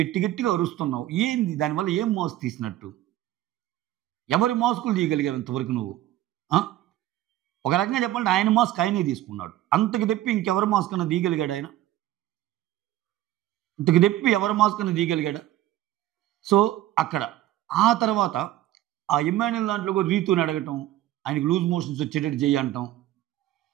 గట్టిగా అరుస్తున్నావు. ఏంది దానివల్ల ఏం మాస్క్ తీసినట్టు? ఎవరి మాస్కులు తీయగలిగావు ఇంతవరకు నువ్వు? ఒక రకంగా చెప్పాలంటే ఆయన మాస్క్ ఆయనే తీసుకున్నాడు. అంతకు తెప్పి ఇంకెవరి మాస్క్ అన్నా తీయగలిగాడా ఆయన? ఇంతకు తెప్పి ఎవరి మాస్క్ అన్నా తీయగలిగాడా? సో, అక్కడ ఆ తర్వాత ఆ ఇమ్మాన్యుయల్ దాంట్లో కూడా రీతూని అడగటం, ఆయనకు లూజ్ మోషన్స్ వచ్చేటట్టు చెయ్యంటాం.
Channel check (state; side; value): quieter; left; 14.2 dB